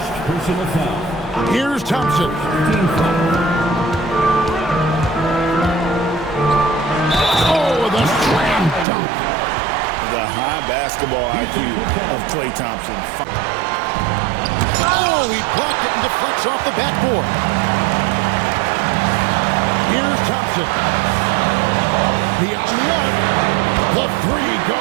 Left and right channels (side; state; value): left; drops out; at 8.8 s